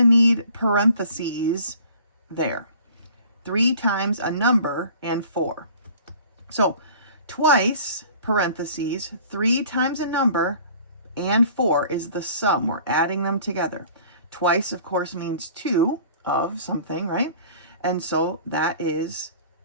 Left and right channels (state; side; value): inverted; both; correlation -0.48